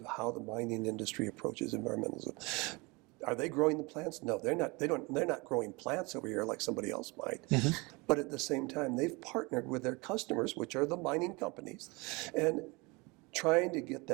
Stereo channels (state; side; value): quieter; left; 26.5 dB